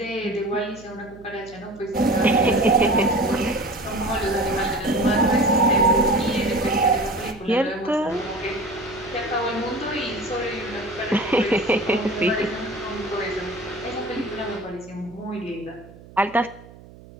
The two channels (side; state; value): right; noise; hum, 21 dB below the sound